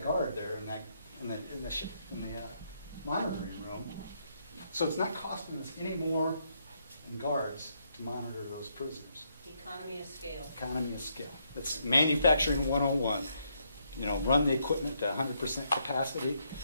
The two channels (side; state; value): both; inverted; correlation -0.75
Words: guard there in the monitoring room. So it's not costing us any more in guards to monitor those prisoners. Economy of scale. Economy of scale. It's manufacturing 101. Run the equipment to 100% capacity.